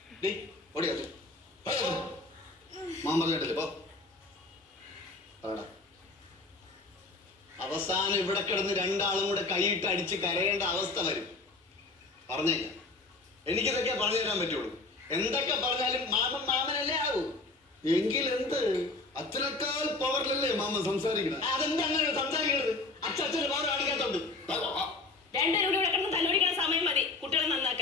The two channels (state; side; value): quieter; right; 3.4 dB